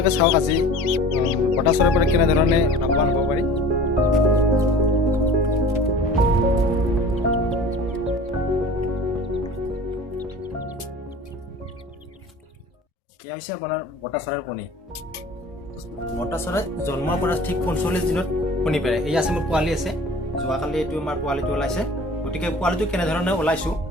চাওক আজি বটা চৰাইৰ পৰা কেনেধৰণে লাভৱান হ'ব পাৰি। এয়া হৈছে আপোনাৰ বটা চৰাইৰ কণী। বটা চৰাই জন্মৰ পৰা ঠিক ৪৫ দিনত কণী পাৰে। এই আছে মোৰ পোৱালি আছে, যোৱাকালি এইটো আমাৰ পোৱালিটো ওলাইছে। গতিকে পোৱালিটো কেনেধৰণে ওলাইছোঁ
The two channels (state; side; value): normal; both; correlation 0.43